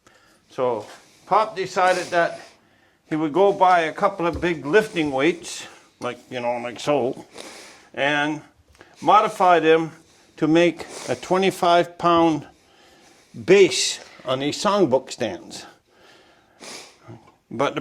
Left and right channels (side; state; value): both; identical; correlation 1.00